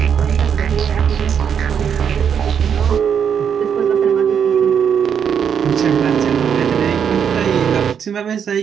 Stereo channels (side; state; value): left; quieter; 7.7 dB